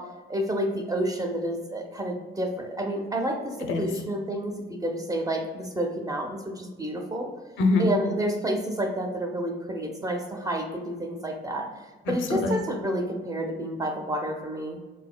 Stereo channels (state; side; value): normal; both; correlation 0.57